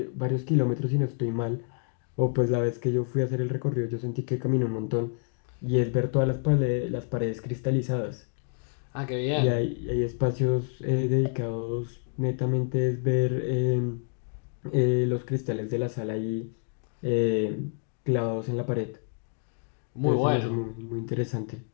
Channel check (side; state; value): right; silent; 59 dB below the other